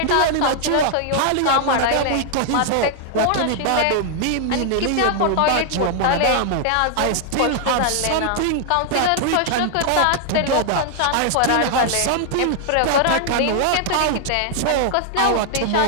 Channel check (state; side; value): different; both; correlation 0.00